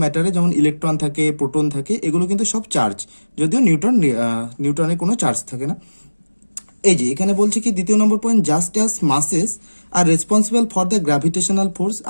ম্যাটারে, যেমন ইলেকট্রন থাকে, প্রোটন থাকে, এগুলো কিন্তু সব চার্জ। যদিও নিউটনের কোনো চার্জ থাকে না। এই যে এখানে বলছে কি, দ্বিতীয় নম্বর point, just as masses are responsible for the gravitational force.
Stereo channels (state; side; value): inverted; both; correlation -1.00